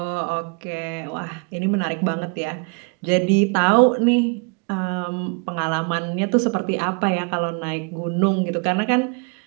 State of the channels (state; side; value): quieter; left; 33.6 dB